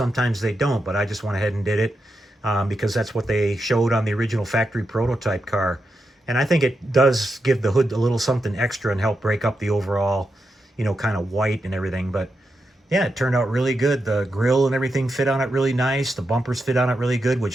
they don't, but I just went ahead and did it because that's what they showed on the original factory prototype car. And I think it does give the hood a little something extra and help break up the overall, you know, kind of white and everything. But yeah, it turned out really good. The grille and everything fit on it really nice. The bumpers fit on it really good,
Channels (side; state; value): both; normal; correlation 0.86